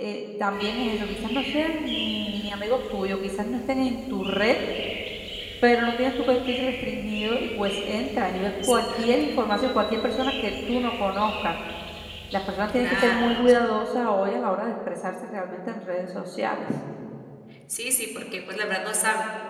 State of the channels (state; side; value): identical; both; correlation 1.00